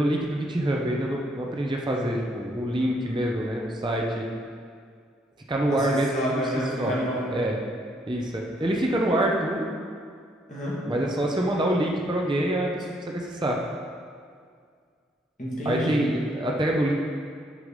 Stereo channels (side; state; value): both; normal; correlation 0.70